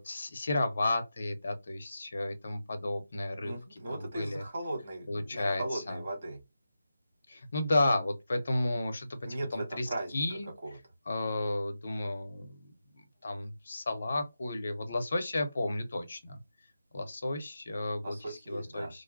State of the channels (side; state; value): both; inverted; correlation -0.91